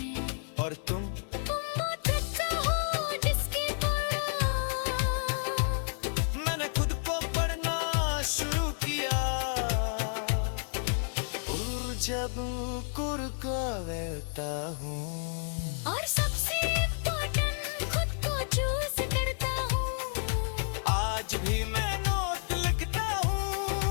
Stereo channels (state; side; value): silent; right; digital silence